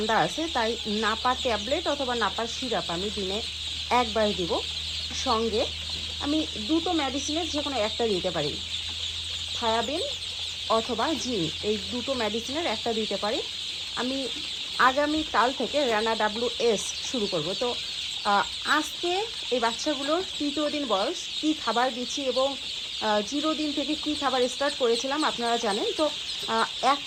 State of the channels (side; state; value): both; identical; correlation 1.00